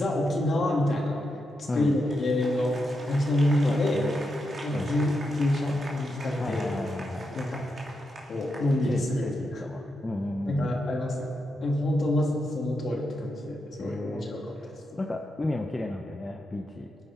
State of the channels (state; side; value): normal; both; correlation 0.85